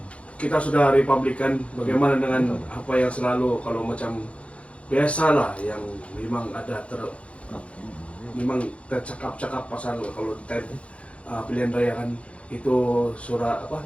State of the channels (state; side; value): late; right; 0.062 ms